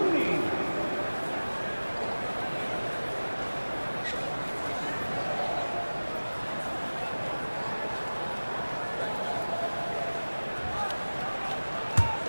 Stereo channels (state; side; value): inverted; both; correlation -1.00